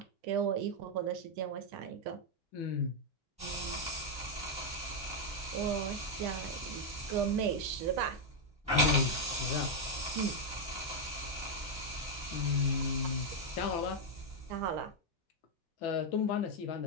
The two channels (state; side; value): normal; both; correlation 0.01